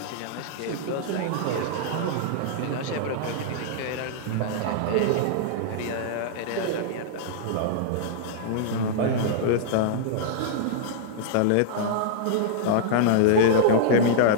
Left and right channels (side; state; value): both; different; correlation -0.02